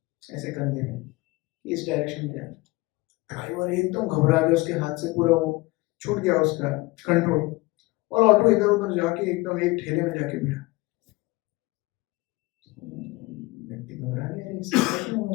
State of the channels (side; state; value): right; quieter; 22.4 dB